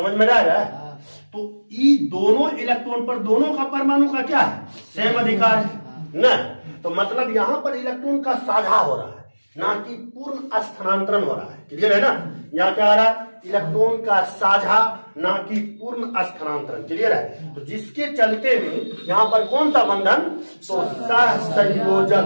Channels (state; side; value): inverted; both; correlation -1.00